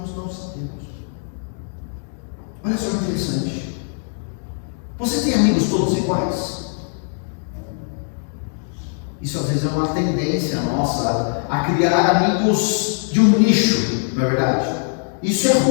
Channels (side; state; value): right; silent; 57 dB below the other